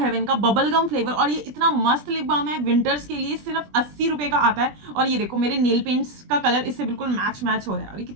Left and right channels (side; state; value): left; late; 20 ms